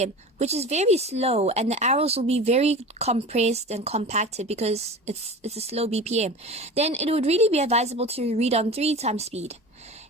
which is very slow, and the arrows will be very compressed and compacted because it's a slow BPM. Then it would really be advisable to read on 3 times speed.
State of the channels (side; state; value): both; normal; correlation 0.34